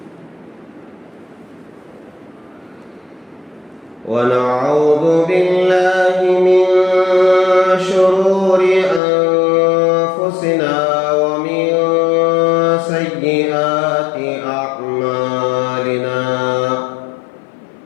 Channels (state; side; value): drops out; right; at 9.0 s